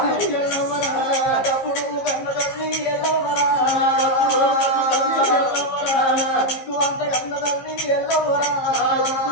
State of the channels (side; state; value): right; late; 15 ms